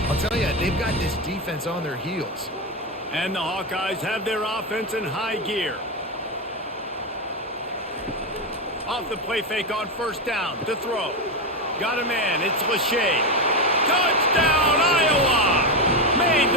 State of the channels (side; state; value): both; normal; correlation 0.11